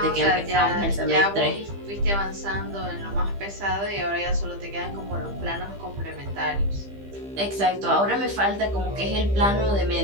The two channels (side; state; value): left; late; 15 ms